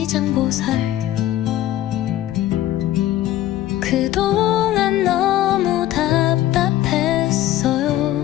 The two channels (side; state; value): right; quieter; 13.7 dB